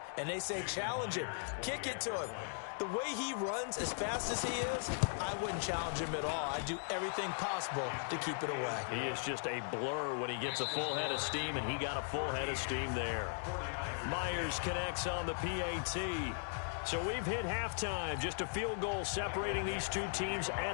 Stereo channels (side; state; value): right; silent; digital silence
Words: And they say, challenge him. Kick it to him. The way he runs as fast as he is, I wouldn't challenge him at all. I'd do everything possible to keep it away. He is just a blur when he gets a full head of steam, and he got a full head of steam there. Myers connects on the PAT. So we've hit halftime, just a field goal separating these two teams